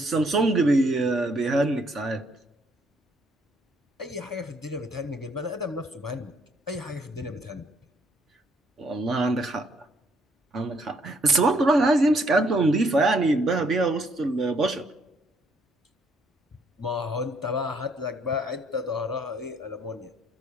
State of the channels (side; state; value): both; normal; correlation 0.68